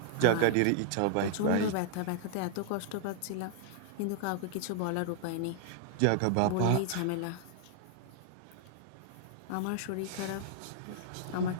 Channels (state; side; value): different; both; correlation -0.01